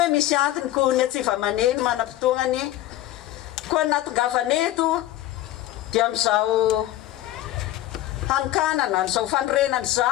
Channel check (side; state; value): right; quieter; 14.5 dB